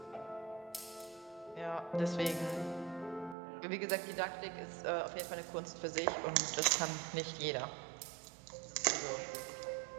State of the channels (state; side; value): drops out; left; at 3.4 s